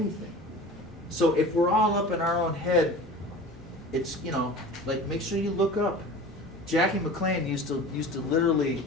So if we're all up in our own head, it's, you know, like make sure you look up. Jackie McLean used to literally,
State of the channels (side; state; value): both; normal; correlation 0.38